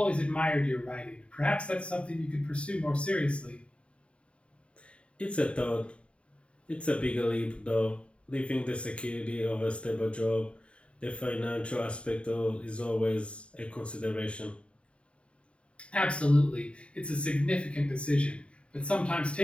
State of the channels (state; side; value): late; right; 0.059 ms